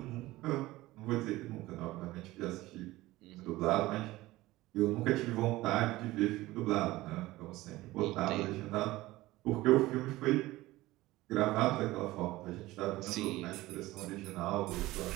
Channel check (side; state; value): left; quieter; 18.1 dB